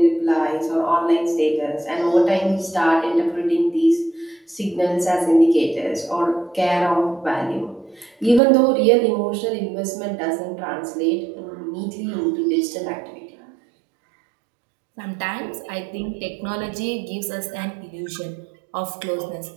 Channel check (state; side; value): drops out; left; at 8.4 s